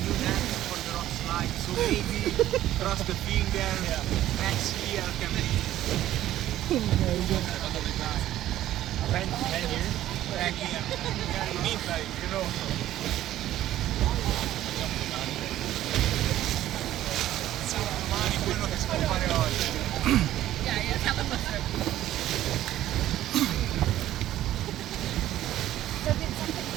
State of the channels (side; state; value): left; quieter; 13.4 dB